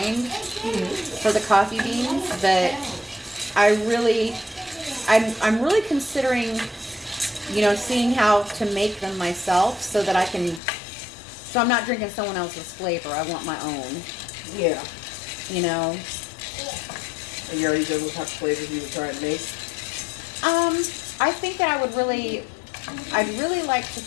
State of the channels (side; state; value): right; drops out; at 10.6 s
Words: for the coffee beans. But I'm really considering, seeing how to make them myself so that I can. So I'm not drinking someone else's flavor. I want my own. Yeah. And you already done what type of flavors you would try and make? I think that I'd really like to